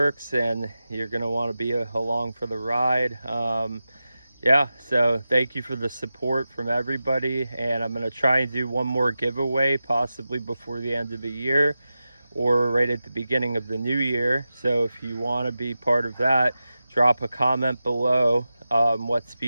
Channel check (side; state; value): both; inverted; correlation -0.93